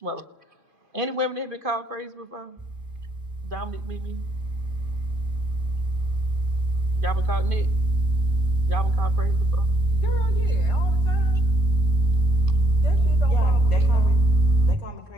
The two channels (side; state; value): both; normal; correlation 0.68